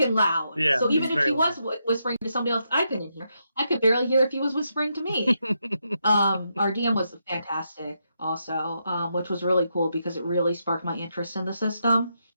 loud. Yeah, so even if he was whispering to somebody else, I couldn't hear. I could barely hear if he was whispering to me. Our DM was fantastic, also, which was really cool because it really sparked my interest in the system.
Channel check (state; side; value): inverted; both; correlation -0.82